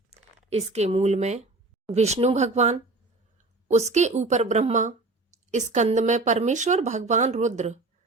इसके मूल में विष्णु भगवान, उसके ऊपर ब्रह्मा, स्कंद में परमेश्वर भगवान रुद्र,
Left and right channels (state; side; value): quieter; left; 3.2 dB